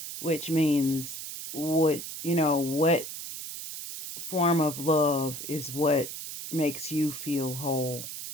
which means what form of love is what makes you feel whole.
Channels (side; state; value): right; noise; hiss, 8 dB below the sound